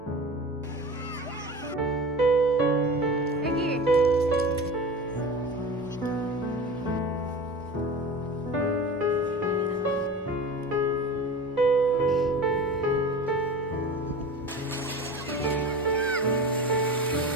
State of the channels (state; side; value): normal; both; correlation 0.34